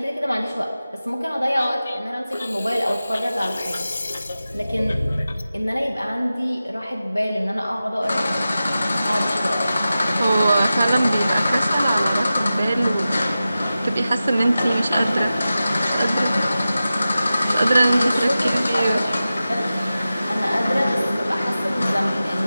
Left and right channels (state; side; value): inverted; both; correlation -0.94